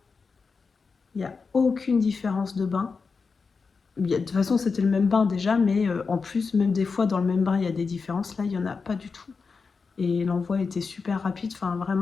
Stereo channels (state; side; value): quieter; right; 4.9 dB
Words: il n'y a aucune différence de bain. De toute façon, c'était le même bain déjà, mais en plus, même des fois, dans le même bain, il y a des différences. Là, il n'y en a pas du tout. Et l'envoi était super rapide. Enfin,